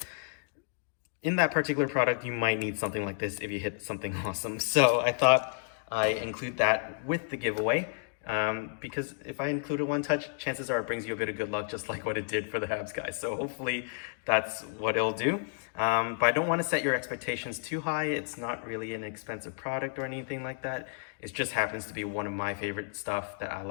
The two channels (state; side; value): silent; right; digital silence